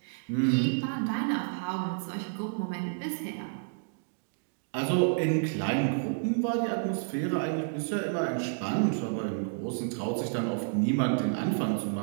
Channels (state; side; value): silent; left; digital silence